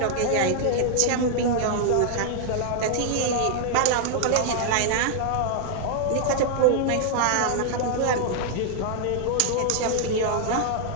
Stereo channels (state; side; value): different; both; correlation -0.01